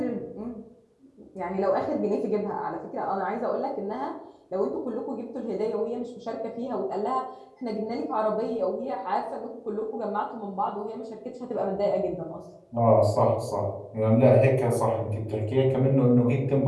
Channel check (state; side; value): identical; both; correlation 1.00